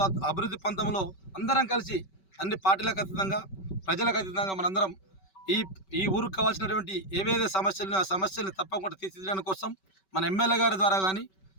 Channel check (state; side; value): late; right; 5.2 ms